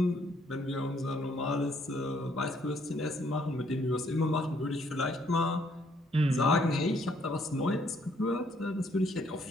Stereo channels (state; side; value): normal; both; correlation 0.67